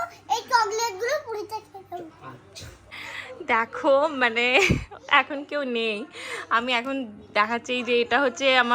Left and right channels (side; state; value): both; identical; correlation 1.00